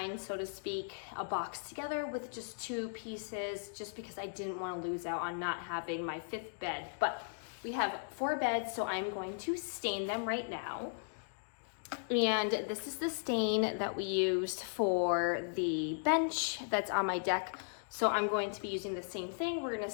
so to speak, a box together with just 2 pieces, just because I didn't want to lose out on not having my 5th bed. But we have 4 beds, so I'm going to stain them right now. And this is the stain that we used for the bench that's on my deck. So I'm going to be using the same thing. We're going to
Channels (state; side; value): silent; right; digital silence